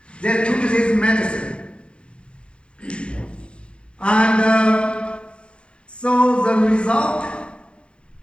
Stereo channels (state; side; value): late; right; 0.057 ms